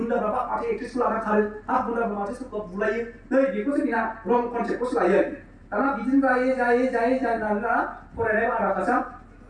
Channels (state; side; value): identical; both; correlation 1.00